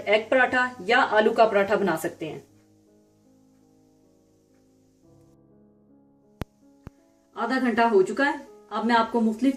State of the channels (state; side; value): identical; both; correlation 1.00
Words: पराठा या आलू का पराठा बना सकते हैं। आधा घंटा हो चुका है। अब मैं आपको